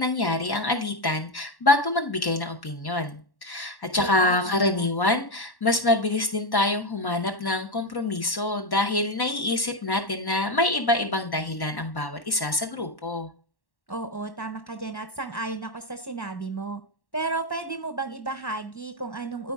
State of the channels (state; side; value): late; right; 1.1 ms